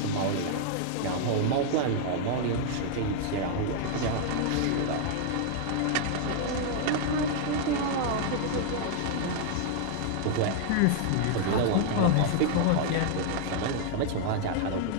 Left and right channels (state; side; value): different; both; correlation 0.00